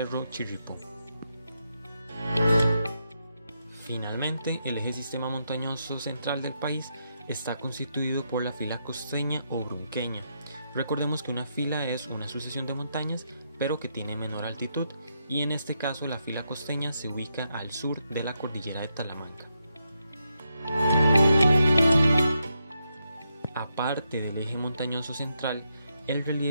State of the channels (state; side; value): inverted; both; correlation -0.83